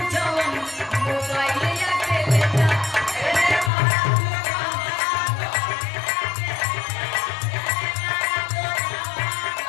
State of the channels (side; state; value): right; drops out; at 3.7 s